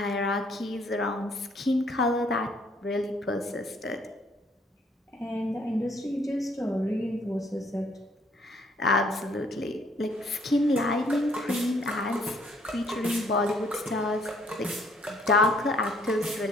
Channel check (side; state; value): both; normal; correlation 0.64